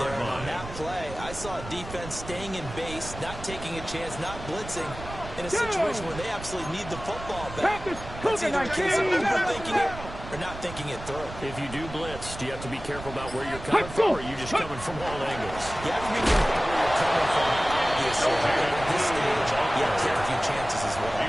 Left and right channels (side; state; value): right; noise; rumble, 12 dB below the sound